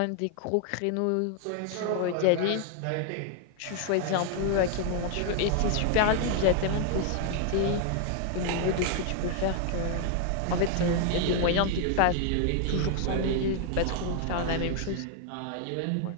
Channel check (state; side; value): different; both; correlation 0.00